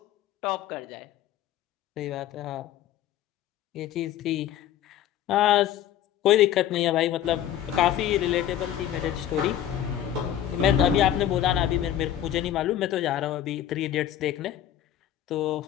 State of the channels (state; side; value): quieter; right; 11.2 dB